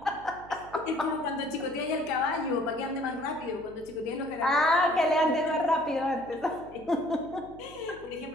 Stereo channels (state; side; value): noise; right; hum, 20 dB below the sound